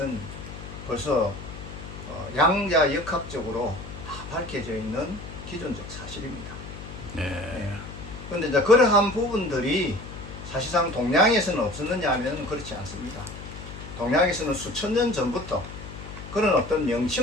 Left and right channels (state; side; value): noise; left; hum, 12 dB below the sound